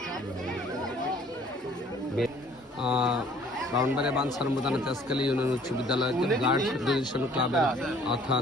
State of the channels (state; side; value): normal; both; correlation 0.56